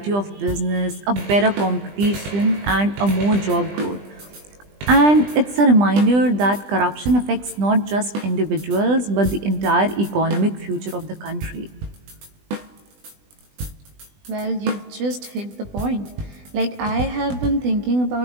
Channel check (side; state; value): left; late; 20 ms